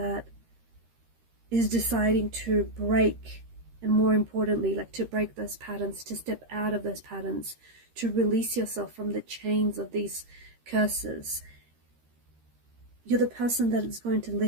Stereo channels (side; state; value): left; late; 13 ms